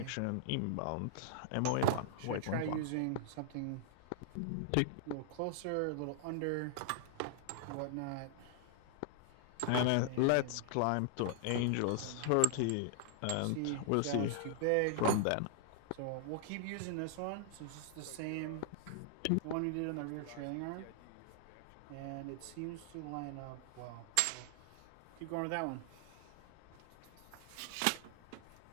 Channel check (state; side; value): different; both; correlation -0.01